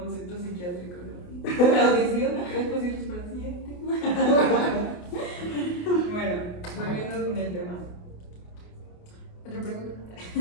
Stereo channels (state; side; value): late; right; 28 ms